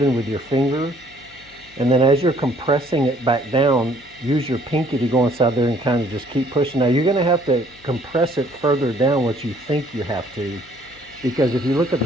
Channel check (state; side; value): noise; left; hum, 26 dB below the sound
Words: with your finger. And then as you're compressing it back down, use your pinky to go inside there and kind of just keep pushing. Now you're going to have to compress it further down what you think you have to, because if you look at